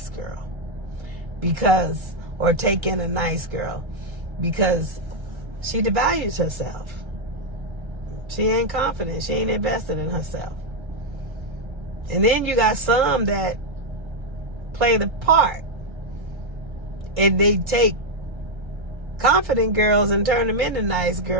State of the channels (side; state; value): left; late; 1.3 ms